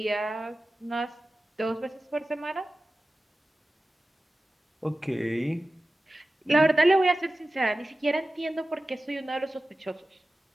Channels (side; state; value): both; normal; correlation 0.95